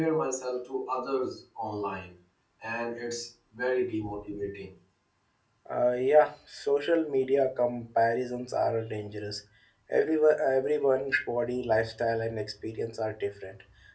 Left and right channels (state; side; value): identical; both; correlation 1.00